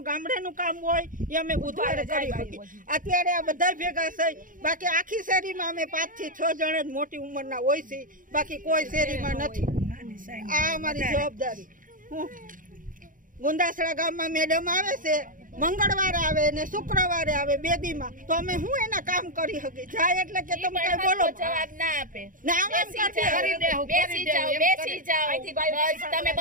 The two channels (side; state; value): left; late; 0.39 ms